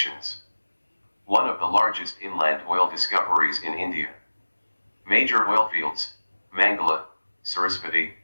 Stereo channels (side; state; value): both; inverted; correlation -1.00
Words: One of the largest inland oil discoveries in India. Major oil fields, Mangala, Sarasvati,